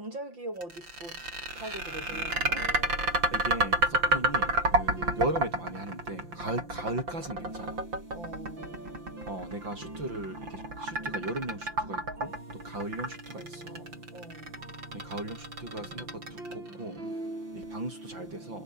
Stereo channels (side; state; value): left; late; 5.8 ms